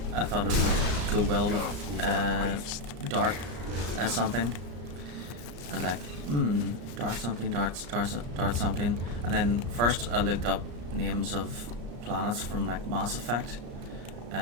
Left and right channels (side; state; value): left; late; 34 ms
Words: I thought it would go well with Dart something. I was like, Dart something, Dart something. And then first I looked up names of planets from like Mass Effect.